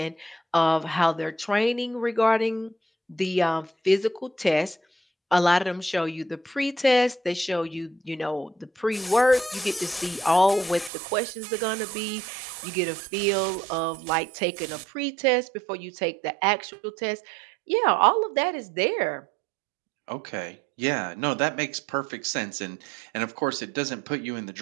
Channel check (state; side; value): drops out; left; at 10.9 s